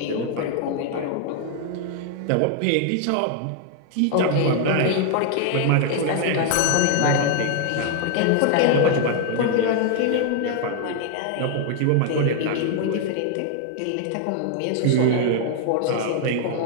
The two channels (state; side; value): different; both; correlation 0.00